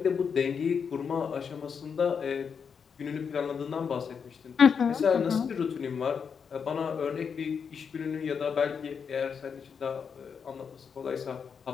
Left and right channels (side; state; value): right; quieter; 6.4 dB